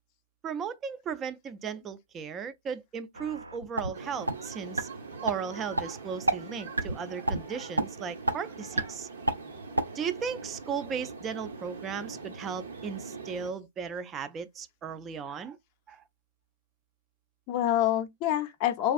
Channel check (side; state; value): both; normal; correlation -0.08